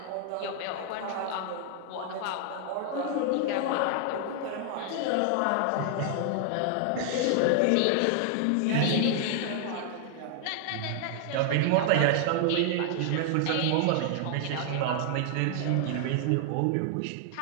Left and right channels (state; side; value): different; both; correlation 0.00